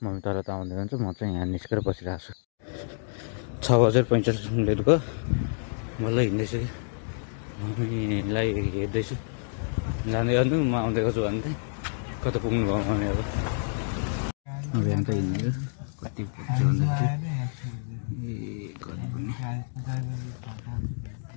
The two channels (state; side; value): silent; right; digital silence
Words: तल त आउँदै जान्छ, म चाहिँ यहाँ निस्केर बसिरहेको छु। 6:45 मिनट भयो, मलाई हिँड्दैछु कि मम्मीलाई हेर्दैछु जाँदै गर्नु म आउँदै गर्छु भन्दै। कता पुग्नु भयो मम्मी अब यहाँ त हिँड्ने कति पुग्छ भन्दाखेरि कति पुग्ने